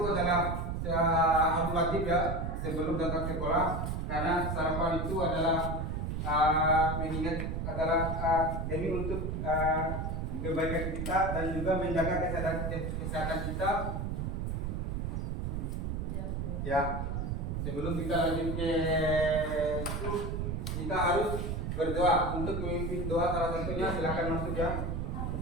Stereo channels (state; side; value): noise; right; rumble, 2 dB below the sound